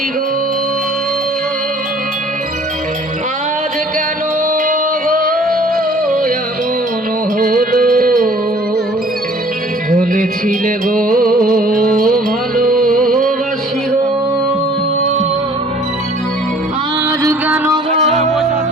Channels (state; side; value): normal; both; correlation 0.53